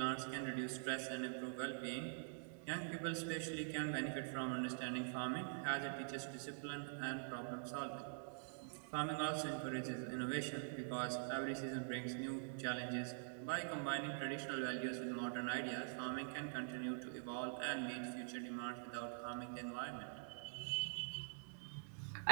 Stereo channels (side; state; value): left; silent; digital silence